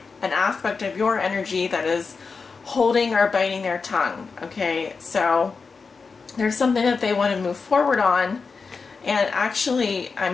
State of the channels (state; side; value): quieter; right; 4.8 dB